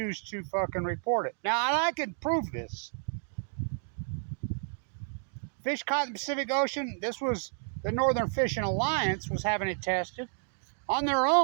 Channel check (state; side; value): silent; left; digital silence